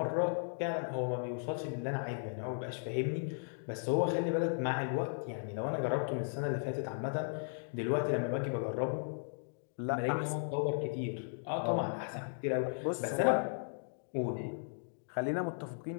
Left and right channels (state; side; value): silent; right; digital silence